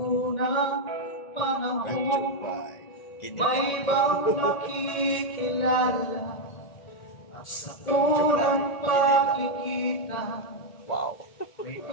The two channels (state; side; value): late; right; 1.8 ms